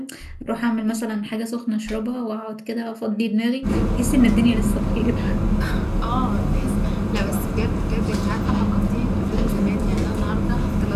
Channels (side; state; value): both; identical; correlation 1.00